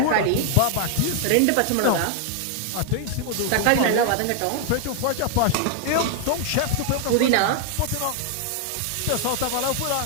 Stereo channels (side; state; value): both; different; correlation 0.00